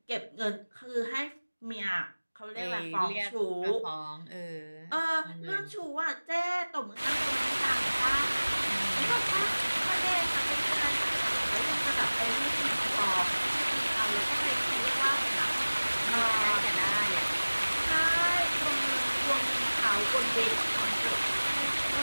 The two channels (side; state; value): both; inverted; correlation -1.00